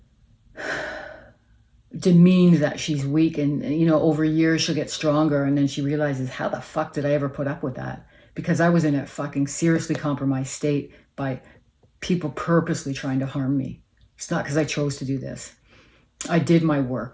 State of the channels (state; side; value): identical; both; correlation 1.00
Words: demeaned that she's weak, and over years she'll get stronger, and then she realizes, how the fuck did I ever put up with that? Because I was in a fucking seriously compromised state by people purposely trying to harm me. It's not because I chose to do this. I did my